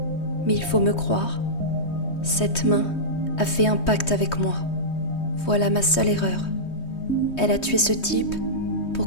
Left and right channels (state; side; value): late; right; 3.2 ms